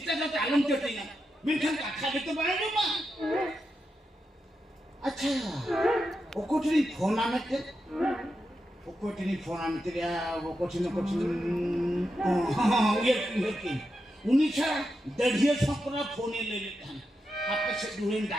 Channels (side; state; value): both; normal; correlation 0.87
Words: पे आलम चटिया मिनखन का तो बनाई मा अच्छा ओकोटरी फोन आने के या वो कुछ हां ये की उनीछा दढ़िया छपरा फोन ले लेते हैं आपके से दूर